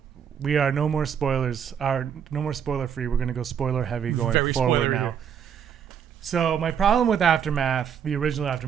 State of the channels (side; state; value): left; quieter; 8.1 dB